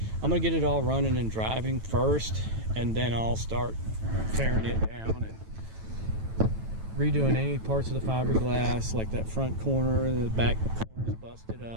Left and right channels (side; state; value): left; late; 9.1 ms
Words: I'm gonna get it all running and driving first, and then I'll start tearing it down and redoing any parts of the fiberglass, like that front corner, the back corner is busted